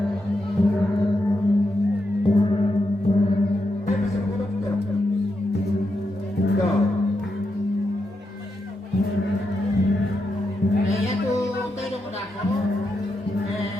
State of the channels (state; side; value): normal; both; correlation 0.85